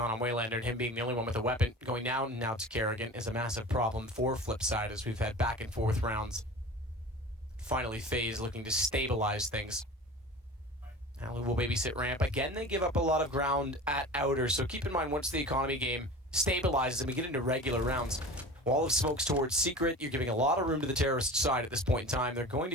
on Waylander and him being the only one with a weapon going down now to Kerrigan is a massive problem for FlipSid as we've had back and forth rounds. Finally, FaZe looking to stabilize things. Alu will babysit ramp. Again, they give up a lot of ground at outer, so keep in mind once the economy game stabilizes and we get into regular rounds, wall of smokes towards Secret, you're giving a lot of room to the terrorist side at this point in time. They're going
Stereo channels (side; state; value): both; normal; correlation 0.36